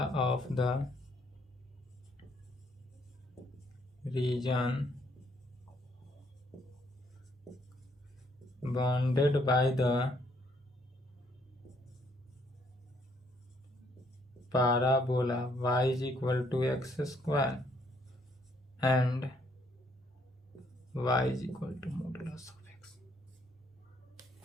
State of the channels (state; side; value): normal; both; correlation 0.69